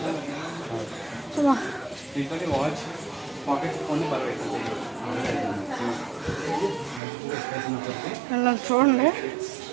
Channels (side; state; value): left; drops out; at 7.0 s